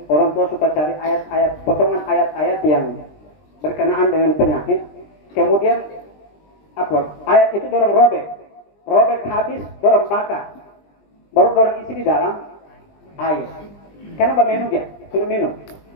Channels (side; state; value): right; late; 20 ms